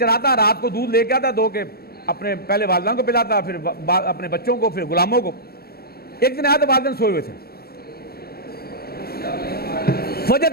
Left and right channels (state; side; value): late; right; 0.45 ms